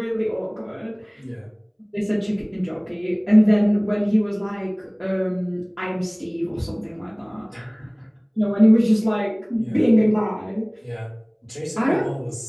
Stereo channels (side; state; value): both; identical; correlation 1.00